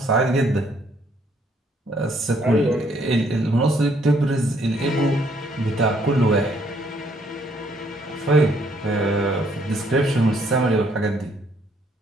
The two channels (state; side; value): normal; both; correlation 0.67